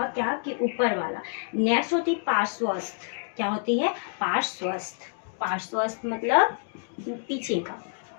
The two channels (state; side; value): silent; right; 60 dB below the other